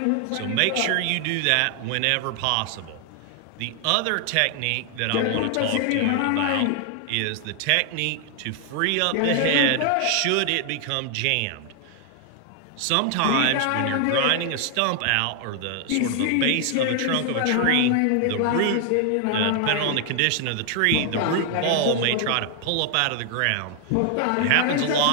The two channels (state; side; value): different; both; correlation 0.00